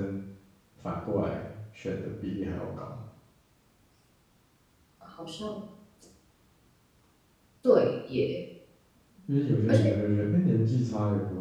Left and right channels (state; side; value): identical; both; correlation 1.00